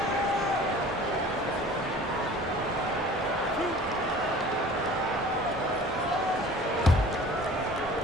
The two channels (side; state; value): both; normal; correlation 0.45